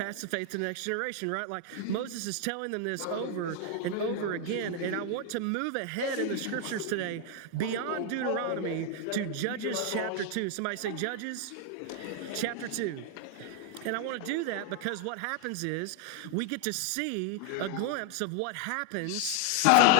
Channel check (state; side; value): different; both; correlation 0.00